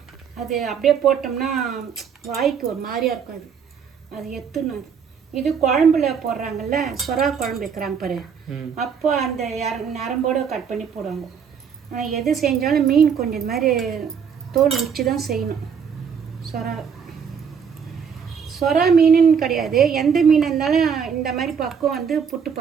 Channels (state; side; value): quieter; left; 6.9 dB